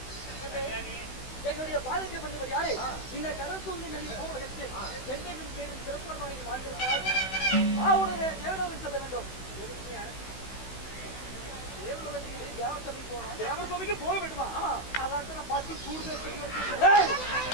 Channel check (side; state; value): right; late; 16 ms